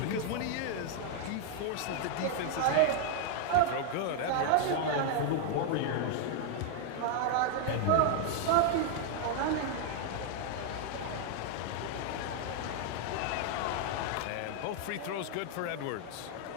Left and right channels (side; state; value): both; different; correlation 0.00